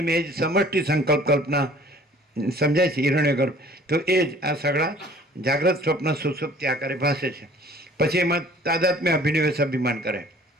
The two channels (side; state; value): both; normal; correlation 0.52